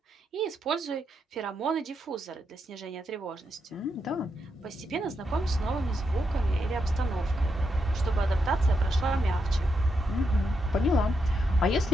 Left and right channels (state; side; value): normal; both; correlation 0.82